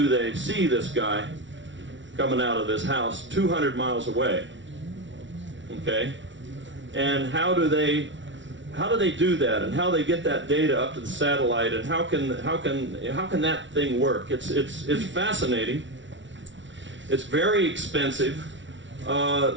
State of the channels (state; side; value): late; left; 0.55 ms